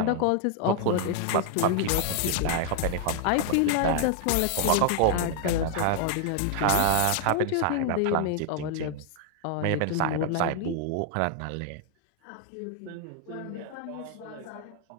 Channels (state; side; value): different; both; correlation 0.00